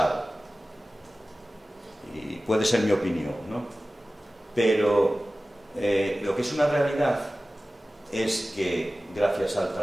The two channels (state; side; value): normal; both; correlation 0.96